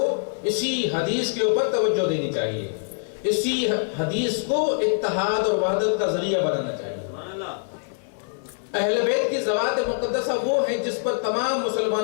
اسی حدیث کے اوپر توجہ دینی چاہیے، اسی حدیث کو اتحاد اور وحدت کا ذریعہ بنانا چاہیے. اہل بیت کی ذوات مقدسہ وہ ہیں جس پر تمام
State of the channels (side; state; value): right; silent; digital silence